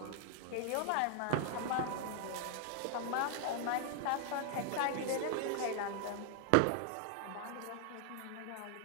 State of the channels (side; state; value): both; different; correlation 0.00